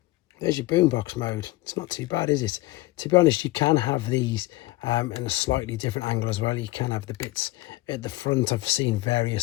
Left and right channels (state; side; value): quieter; right; 19.4 dB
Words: your boombox mode. It's not too bad, is it? To be honest, you can have these in a slightly different angle as well. You can have the bits at the front. I've seen